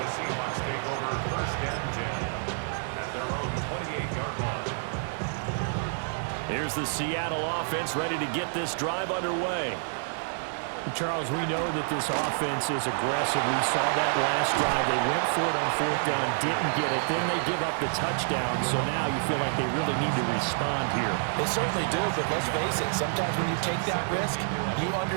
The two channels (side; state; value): left; silent; digital silence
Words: Seahawks take over 1st and 10 at their own 28-yard line. Here's the Seattle offense ready to get this drive underway. Charles, we know that this offense is aggressive. We saw that last drive. They went for it on 4th down, didn't get it. Then they give up the touchdown. So now you feel like they really need to respond here. They certainly do, but let's face it. Sometimes when you take that risk, you